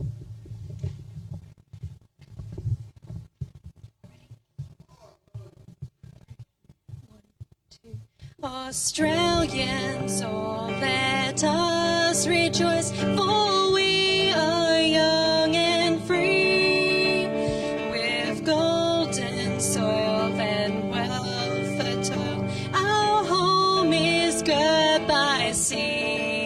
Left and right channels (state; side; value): identical; both; correlation 1.00